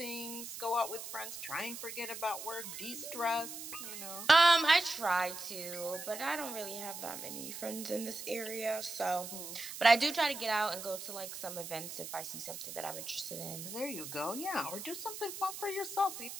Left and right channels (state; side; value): noise; right; hiss, 9 dB below the sound